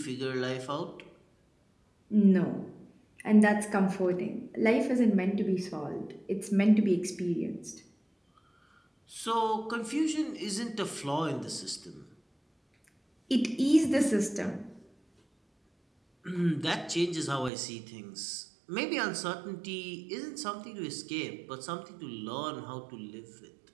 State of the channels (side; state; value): left; drops out; at 17.5 s